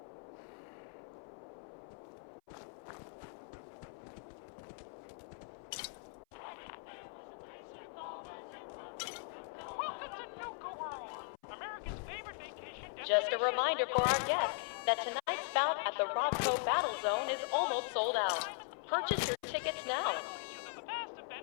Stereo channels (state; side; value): silent; right; 51 dB below the other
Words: Just a reminder for our guests that tonight's bout at the Robco Battle Zone is almost sold out. Purchase your tickets now. The past have